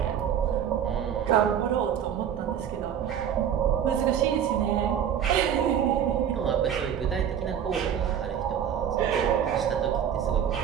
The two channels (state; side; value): quieter; left; 9.0 dB